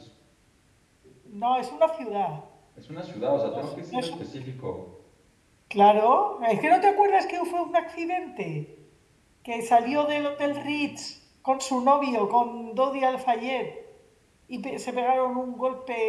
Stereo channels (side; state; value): both; identical; correlation 1.00